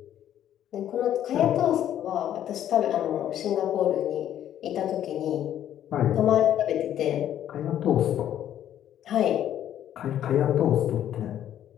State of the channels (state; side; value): quieter; right; 11.0 dB